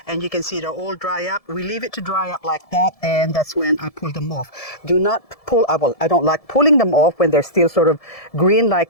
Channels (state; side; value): late; right; 1.7 ms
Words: and you can see they're all dry up. We leave it to dry up like that, and that's when I pull them off. Do not pull, well, I don't like pulling them off when they're still sort of green